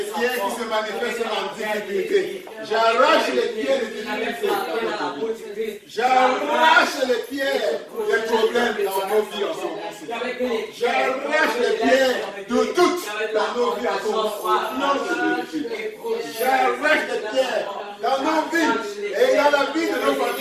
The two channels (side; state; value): both; identical; correlation 1.00